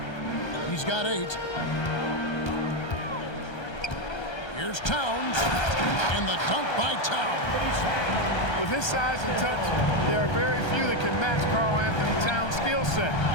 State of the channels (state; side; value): late; right; 1.3 ms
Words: He's got 8. Here's Towns. And the dunk by Towns. With his size and touch, there are very few that can match Karl Anthony Towns' skill set,